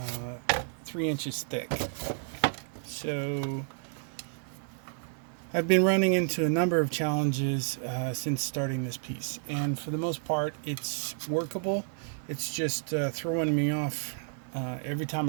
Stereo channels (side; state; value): left; silent; digital silence